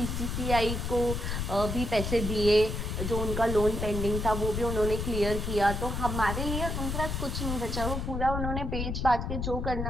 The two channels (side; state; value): left; noise; rumble, 2 dB below the sound